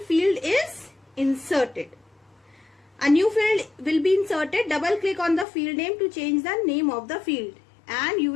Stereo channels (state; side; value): drops out; right; at 5.5 s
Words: field is inserted. A new field will be inserted. Double click on the field name to change the name of the field, and you